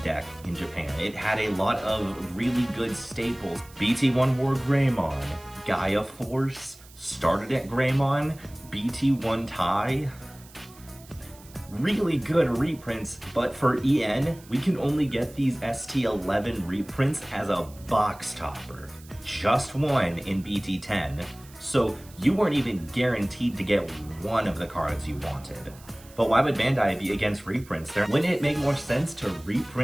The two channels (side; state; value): right; noise; hiss, 23 dB below the sound